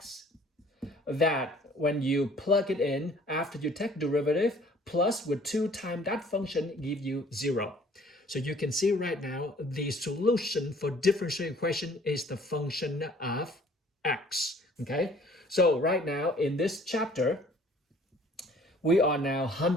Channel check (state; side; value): normal; both; correlation 0.55